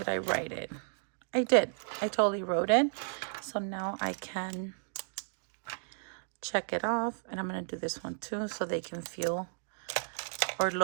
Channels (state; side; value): silent; left; digital silence